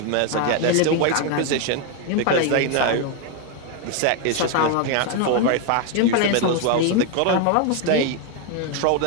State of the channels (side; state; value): both; different; correlation 0.01